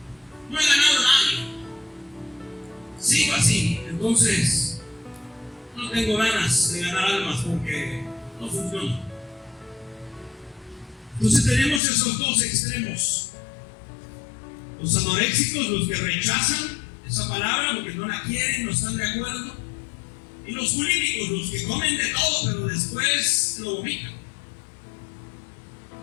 No he ganado a nadie. Sigo así. Entonces, no tengo ganas de ganar almas porque no funciona. Entonces tenemos esos dos extremos. Los anoréxicos, los que rechazan esa palabra porque no la quieren, no están de acuerdo. Y los bulímicos, los que comen de todo pero después lo vomitan.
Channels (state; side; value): drops out; right; at 11.8 s